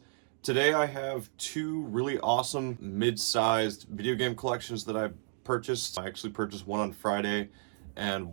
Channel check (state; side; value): silent; left; 56 dB below the other